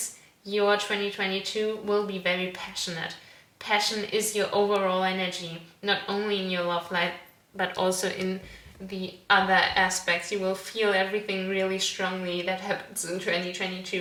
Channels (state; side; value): identical; both; correlation 1.00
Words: your 2022 will be very passionate. Passion is your overall energy, not only in your love life but also in the other aspects. You will feel everything really strongly that happens in